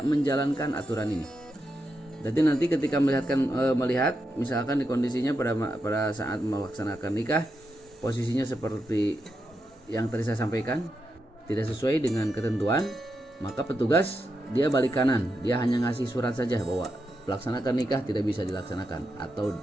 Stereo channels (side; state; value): both; normal; correlation 0.85